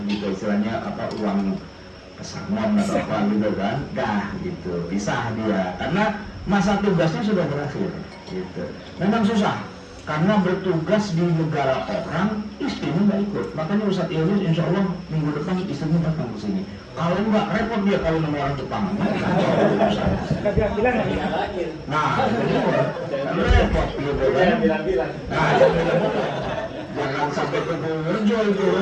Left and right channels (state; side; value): identical; both; correlation 1.00